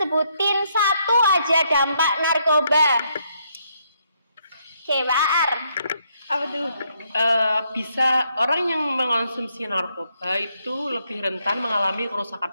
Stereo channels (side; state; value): both; inverted; correlation -0.74